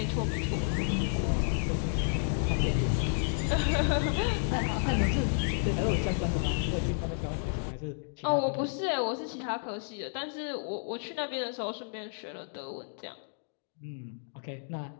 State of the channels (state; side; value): silent; right; digital silence